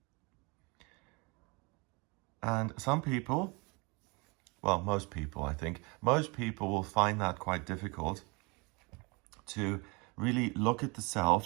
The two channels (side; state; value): left; quieter; 28.8 dB